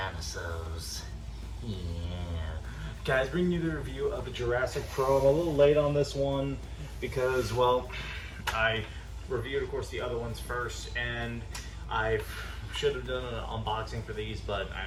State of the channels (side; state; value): both; identical; correlation 1.00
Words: Yeah. Guys, bringing you the review of the Jurassic Pro. I'm a little late on this one because, well, I reviewed, of course, the other ones first, and I should have done an unboxing for these, but I